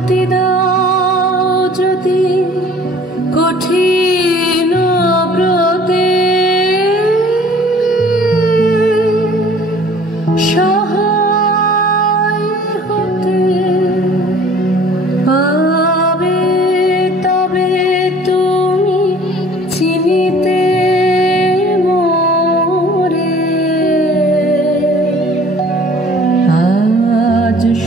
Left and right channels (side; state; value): both; normal; correlation 0.51